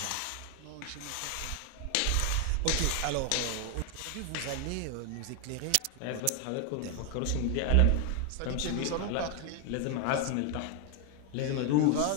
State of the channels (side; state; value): both; different; correlation 0.00